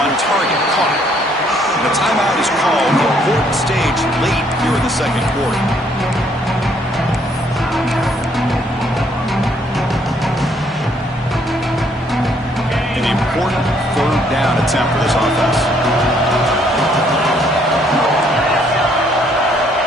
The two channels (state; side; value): normal; both; correlation 0.67